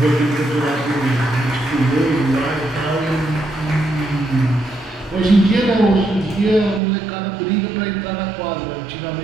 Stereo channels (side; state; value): left; drops out; at 6.8 s